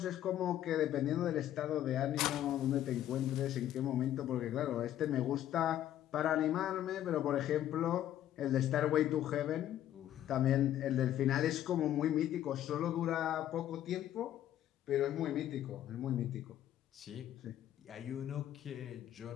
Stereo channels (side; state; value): right; quieter; 12.0 dB